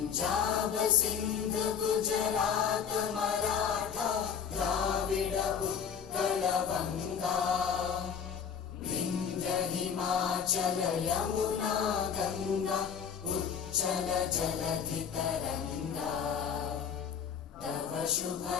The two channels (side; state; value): right; quieter; 7.2 dB